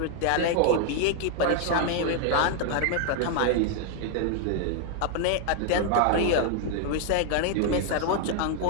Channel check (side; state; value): both; different; correlation 0.00